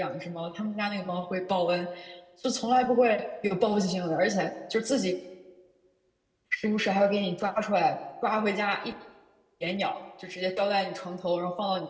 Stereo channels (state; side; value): identical; both; correlation 1.00